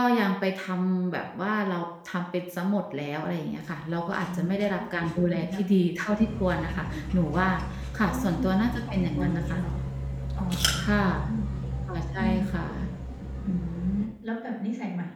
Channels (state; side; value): identical; both; correlation 1.00